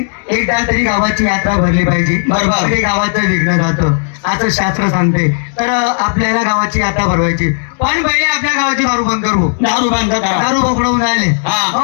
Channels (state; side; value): silent; right; digital silence